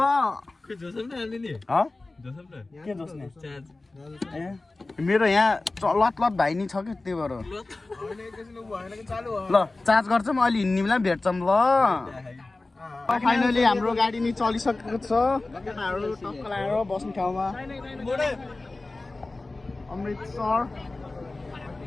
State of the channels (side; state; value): right; quieter; 3.2 dB